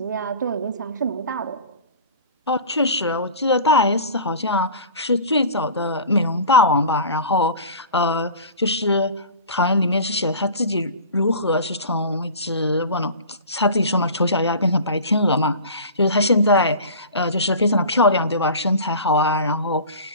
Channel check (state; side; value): inverted; both; correlation -0.38